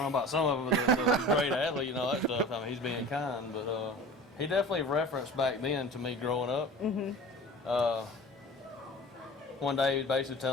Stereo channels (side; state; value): both; normal; correlation 0.39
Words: know about some of them, the great athlete and all that stuff. I mean, he's being kind, but he definitely referenced back then to me growing up. One day he was basically